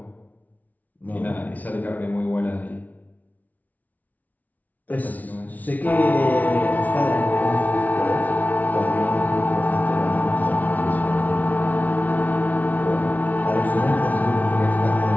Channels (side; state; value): right; late; 0.075 ms